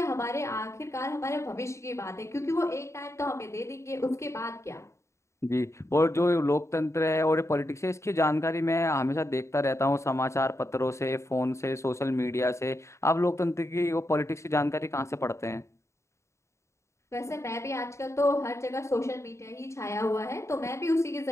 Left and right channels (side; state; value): right; late; 0.14 ms